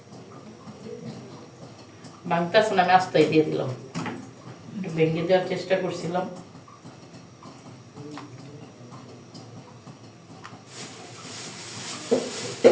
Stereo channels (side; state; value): both; identical; correlation 1.00